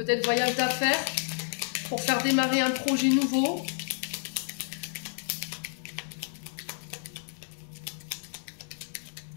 voyage d'affaires, pour faire démarrer un projet nouveau.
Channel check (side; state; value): right; silent; digital silence